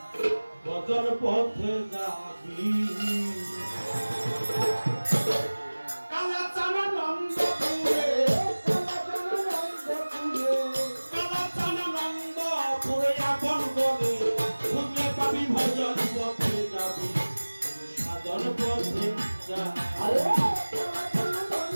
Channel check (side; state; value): both; inverted; correlation -1.00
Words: ভজন পথে যাবি কালাচানানন্দপুরে আপন বলে খুঁজলে পাবি ভজন পথে যাবি সাধন পথে যাবি